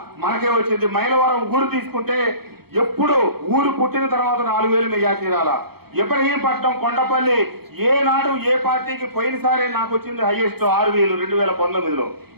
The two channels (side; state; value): left; late; 0.96 ms